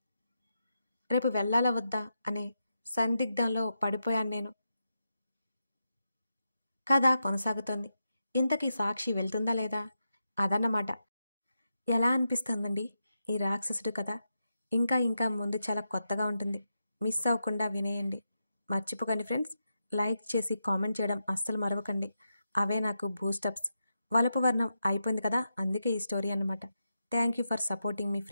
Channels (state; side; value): inverted; both; correlation -0.87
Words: రేపు వెళ్ళాలా వద్దా అనే సందిగ్ధంలో పడిపోయాను నేను. కథ కొనసాగుతోంది. ఇంతకీ సాక్షి వెళ్తుందా లేదా అదన్నమాట. ఎలా అనిపిస్తుందండి ఈ రాక్షసుడు కథ? ఇంకా ముందు చాలా కొత్తగా ఉంటుంది. మిస్ అవ్వకుండా వినేయండి. మర్చిపోకండి ఫ్రెండ్స్, లైక్ చేసి కామెంట్ చేయడం అస్సలు మరవకండి. అవే నాకు బూస్టప్స్. వలపు వర్ణం అయిపోయింది కదా, అందుకే ఈ స్టోరీ అన్నమాట. Thank you for supporting me